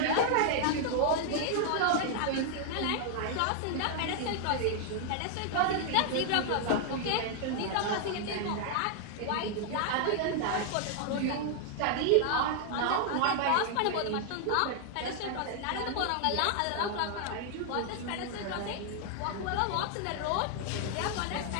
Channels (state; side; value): different; both; correlation 0.00